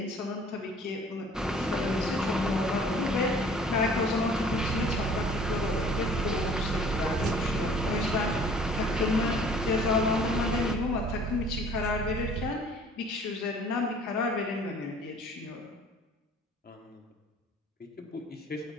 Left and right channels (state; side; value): normal; both; correlation 0.52